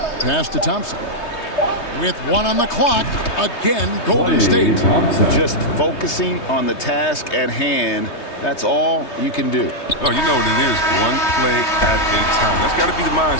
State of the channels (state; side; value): late; right; 3.2 ms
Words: Pass to Thompson. With 1 on the clock, again, Golden State. Just focusing on the task at hand. That's all you can do. Oh, you know what it is. One play at a time. That's got to be the